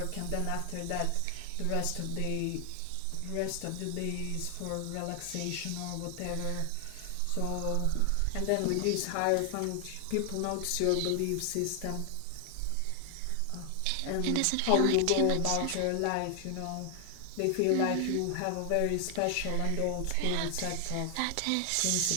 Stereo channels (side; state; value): both; different; correlation 0.00